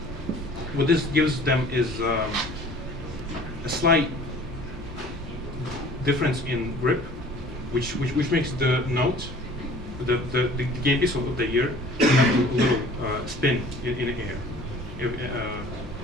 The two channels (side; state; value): both; normal; correlation 0.48